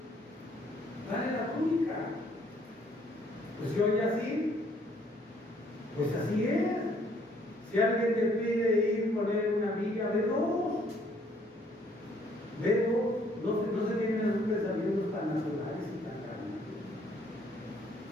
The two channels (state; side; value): normal; both; correlation 0.64